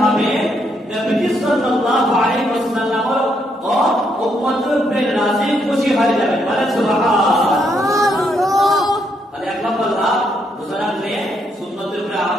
হবে, নবী সাল্লাল্লাহু আলাইহি ওয়াসাল্লাম ও উম্মতের উপরে রাজি খুশি হয়ে যাবে। বলেন সুবহানাল্লাহ। তাহলে এক নম্বর লাভ, রোজা রাখলে সুন্নতের উপরে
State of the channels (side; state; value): both; normal; correlation 0.75